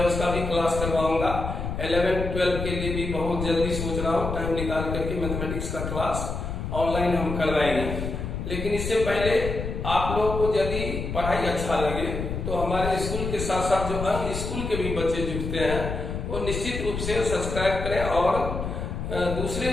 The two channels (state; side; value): noise; left; rumble, 4 dB below the sound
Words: उसका भी क्लास करवाऊंगा। 11-12 के लिए भी बहुत जल्दी सोच रहा हूँ टाइम निकाल करके मैथमेटिक्स का क्लास ऑनलाइन हम करवाएंगे। लेकिन इससे पहले आप लोग को यदि पढ़ाई अच्छा लगे तो हमारे स्कूल के साथ साथ जो अन्य स्कूल के भी बच्चे जुड़ते हैं वो निश्चित रूप से सब्सक्राइब करें और दूसरे